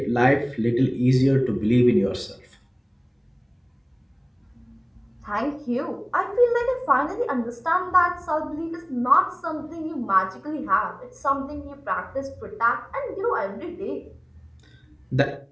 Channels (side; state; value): both; identical; correlation 1.00